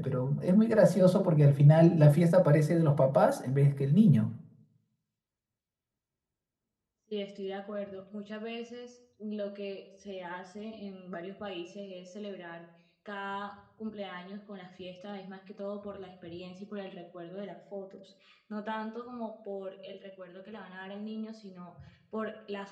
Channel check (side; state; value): both; identical; correlation 1.00